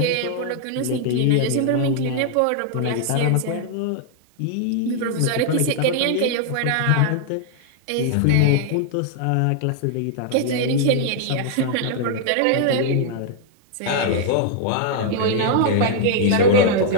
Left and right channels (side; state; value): both; different; correlation 0.00